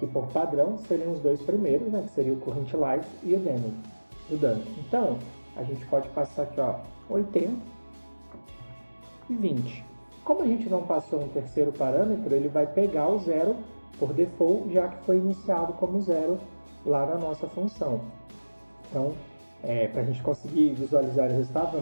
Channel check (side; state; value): both; inverted; correlation -1.00